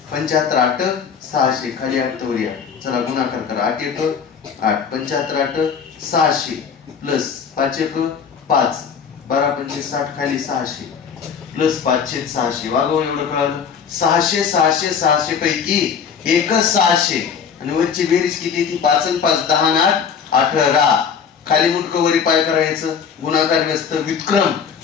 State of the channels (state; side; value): quieter; right; 6.8 dB